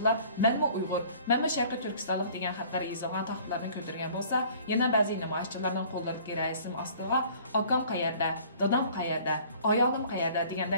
"Menmi Uyg'ur, menmi Sharqiy Turkistonlik" degan degan xatlar yozilgan taxtlarni ko'targan bo'lsa, yana ba'zi namoyishchilarning qo'llaridagi rasm ostiga "Akam qayerda, dadam qayerda, ayolim qayerda"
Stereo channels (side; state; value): both; inverted; correlation -0.52